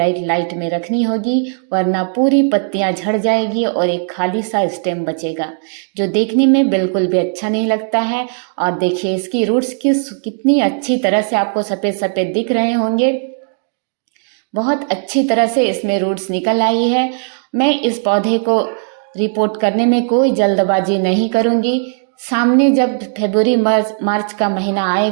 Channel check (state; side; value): silent; left; 64 dB below the other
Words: लाइट में रखनी होगी, वरना पूरी पत्तियां झड़ जाएगी और एक खाली सा स्टेम बचेगा, जो देखने में बिल्कुल भी अच्छा नहीं लगता है। और देखिए, इसकी रूट्स कितनी अच्छी तरह से आपको सफ़ेद सफ़ेद दिख रहे होंगे। बहुत अच्छी तरह से इसमें रूट्स निकल आई है। मैं इस पौधे को रिपोर्ट करने में कोई जल्दबाजी नहीं करूँगी। सामने जब फरवरी मार्च का महीना